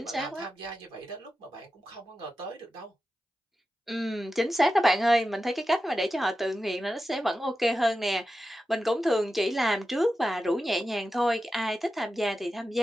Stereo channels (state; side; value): normal; both; correlation 0.92